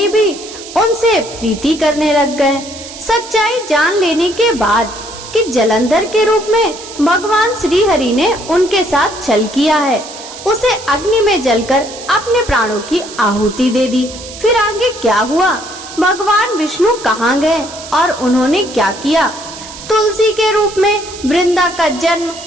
भी उनसे प्रीति करने लग गए। सच्चाई जान लेने के बाद कि जलंधर के रूप में भगवान श्री हरि ने उनके साथ छल किया है, उसे अग्नि में जलकर अपने प्राणों की आहुति दे दी। फिर आगे क्या हुआ? भगवान विष्णु कहाँ गए और उन्होंने क्या किया? तुलसी के रूप में वृंदा का जन्म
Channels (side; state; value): right; noise; hiss, 14 dB below the sound